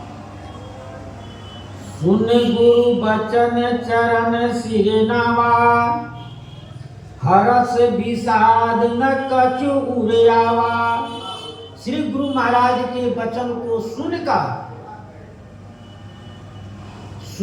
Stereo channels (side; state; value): both; identical; correlation 1.00